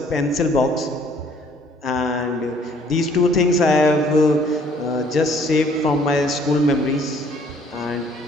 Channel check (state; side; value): normal; both; correlation 0.60